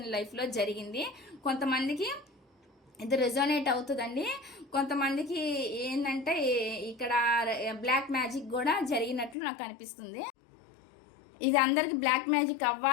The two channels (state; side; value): drops out; right; at 9.3 s